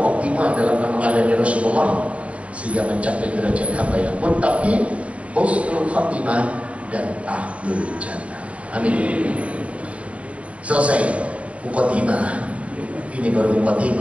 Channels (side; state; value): left; late; 0.064 ms